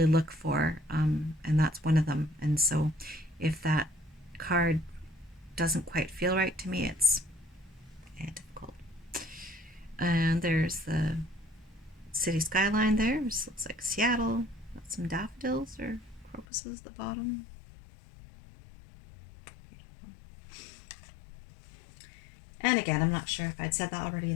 look for, and that's one of them. And so, if that card doesn't quite feel right to me, it's difficult. And there's the city skyline there. This looks like Seattle. Got some daffodils or crocuses at the bottom. And again, I'm not sure if I'd said that already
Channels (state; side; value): drops out; right; at 16.4 s